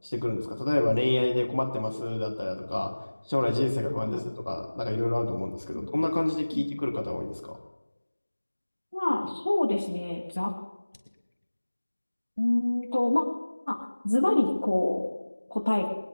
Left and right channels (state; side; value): inverted; both; correlation -1.00